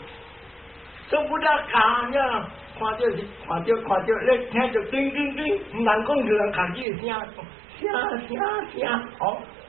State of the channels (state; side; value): drops out; left; at 6.9 s